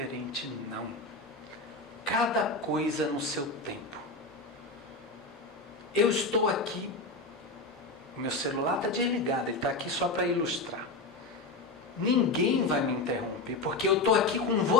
Não. Cada coisa no seu tempo. Eu estou aqui, o meu celular está desligado, ele está aqui só para ilustrar. Ninguém vai me interromper, porque eu estou aqui com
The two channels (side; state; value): right; quieter; 3.3 dB